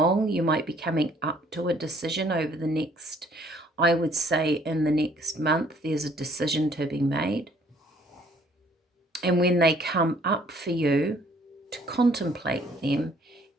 You might be coming up to a decision over the next, I would say in the next month, there's a decision to be made. And when they come up for you, to contemplate them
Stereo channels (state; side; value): normal; both; correlation 0.60